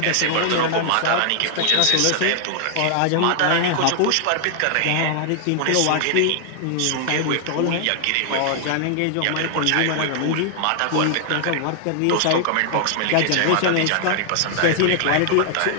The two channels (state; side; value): different; both; correlation 0.00